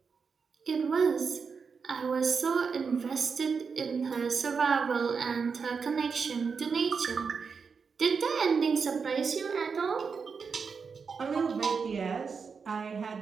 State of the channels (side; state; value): left; quieter; 5.5 dB